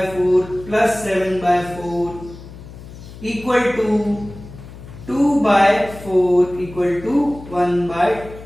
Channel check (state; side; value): noise; left; hum, 16 dB below the sound